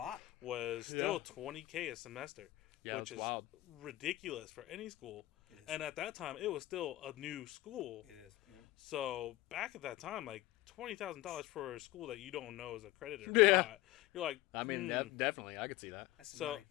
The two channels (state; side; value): quieter; right; 17.2 dB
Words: was still Yeah. $20K a semester, Yeah, which it's is wild. ridiculous for any school. It is. And at that time, it was still a new school. It is. Yeah. So back at that time, like $20,000 for a school that you don't know is accredited or Yeah. not, you're like, I mean, definitely, I could see that. That's some so money.